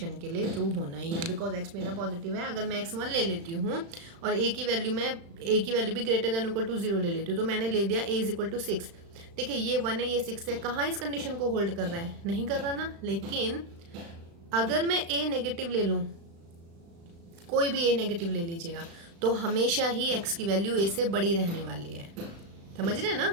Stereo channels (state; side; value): late; left; 35 ms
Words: के लिए ट्रू होना ही है, बिकॉज एक्स मेरा पॉजिटिव है। अगर मैं x1 ले लेती हूँ और ए की वैल्यू भी ग्रेटर देन इक्वल टू 0 ले लेती हूँ, तो मैंने ले दिया ए इज इक्वल टू 6। देखिए ये 1 है ये 6 है, कहाँ इस कंडीशन को होल्ड कर रहा है, नहीं कर रहा ना। लेकिन अगर मैं ए नेगेटिव ले लूँ, कोई भी ए नेगेटिव ले लीजिएगा, तो हमेशा ही एक्स की वैल्यू ए से बड़ी रहने वाली है, समझ रहे हैं ना।